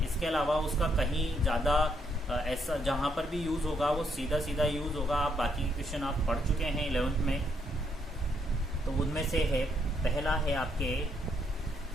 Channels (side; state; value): both; normal; correlation 0.74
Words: अलावा उसका कहीं ज़्यादा ऐसा जहाँ पर भी यूज़ होगा वो सीधा सीधा यूज़ होगा। आप बाकी क्वेश्चन आप पढ़ चुके हैं 11th में। तो उनमें से है, पहला है आपके